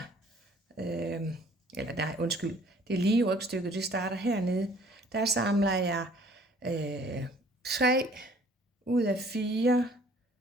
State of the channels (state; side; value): normal; both; correlation 0.56